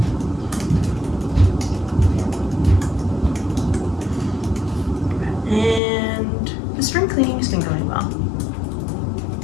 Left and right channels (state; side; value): drops out; right; at 5.8 s